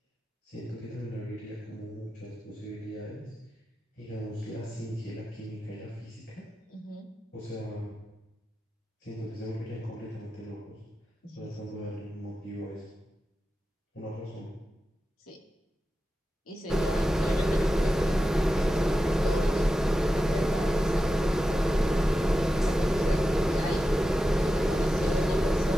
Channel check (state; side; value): normal; both; correlation 0.92